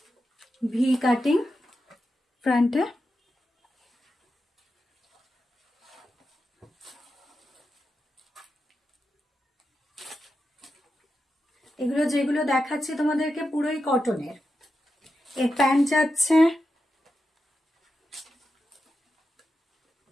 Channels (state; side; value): normal; both; correlation 0.89